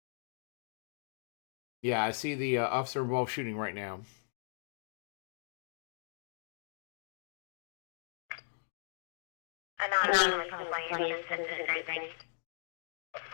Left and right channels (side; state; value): right; silent; digital silence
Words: yeah, I see the officer involved shooting right now. Anonymous complaints and everything.